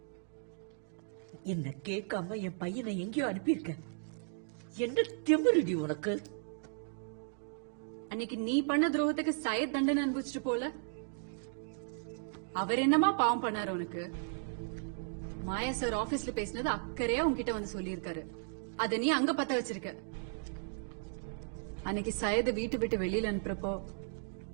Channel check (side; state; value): left; silent; digital silence